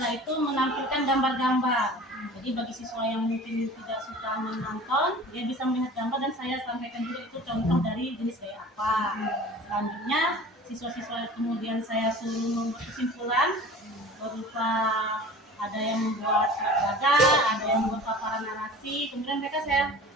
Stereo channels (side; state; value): both; normal; correlation 0.41